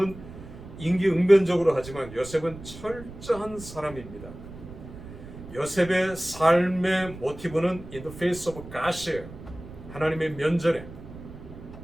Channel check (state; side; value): noise; right; rumble, 14 dB below the sound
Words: 임기응변적으로 하지만 요셉은 철저한 사람입니다. 요셉의 삶의 모티브는 in the face of God이에요. 하나님의 면전에